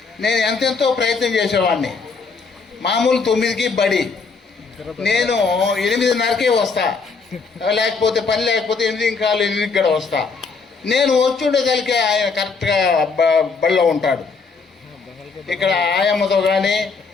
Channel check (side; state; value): right; quieter; 4.8 dB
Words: నేను ఎంతెంతో ప్రయత్నం చేసేవాడిని. మామూలు 9కి బడి, నేను 8:30కే వస్తా, లేకపోతే పని లేకపోతే 8:15 కూడా వస్తా. నేను వచ్చుండేదానికి ఆయన కరెక్ట్గా బడిలో ఉంటాడు. ఇక్కడ ఆయమ్మతో కానీ,